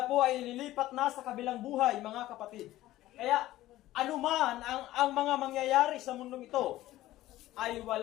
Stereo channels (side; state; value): right; quieter; 15.5 dB